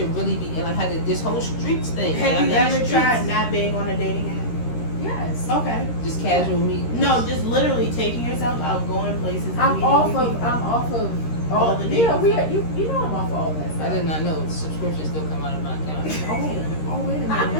really be, and like how this whole streets thing. Have like, you I'm in the ever streets. tried not being on a dating app? Yes. Okay. Just casual meetings? No, just literally taking yourself out, going places. and I'm meeting off new of people. all the yeah, dating you know I'm off of all that stuff. I did not know the subscription still come out of my account. Oh, wait a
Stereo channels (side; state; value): right; late; 13 ms